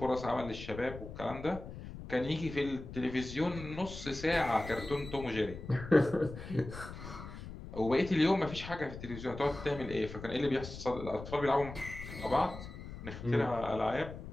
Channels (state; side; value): noise; left; rumble, 11 dB below the sound